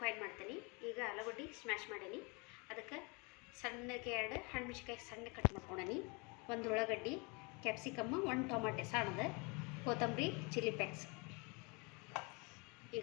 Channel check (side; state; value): right; quieter; 30.4 dB